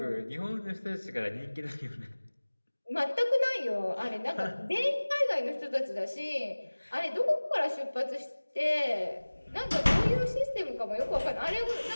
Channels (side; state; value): both; inverted; correlation -1.00